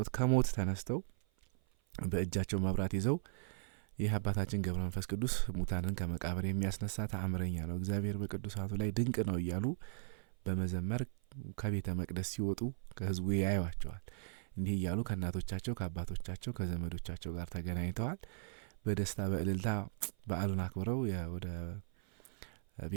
ከሞት ተነስተው በእጃቸው መብራት ይዘው ይህ አባታችን ገብረ መንፈስ ቅዱስ ሙታንን ከመቃብር የሚያስነሳ ተአምረኛ ነው፣ እግዚአብሔር በቅዱሳቱ ላይ ድንቅ ነው እያሉ በመዘመር ከቤተ መቅደስ ሲወጡ ከህዝቡ ያዩዋቸዋል። እንዲህ እያሉ ከእናቶቻቸው ከአባቶቻቸው ከዘመዶቻቸው ጋር ተገናኝተዋል። በደስታ በእልልታ በዓሉን አክብረው ወደ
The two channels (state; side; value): silent; left; 53 dB below the other